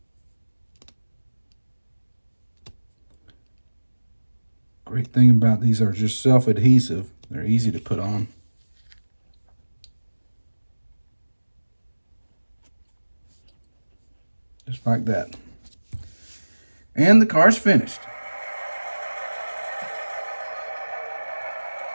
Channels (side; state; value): both; inverted; correlation -1.00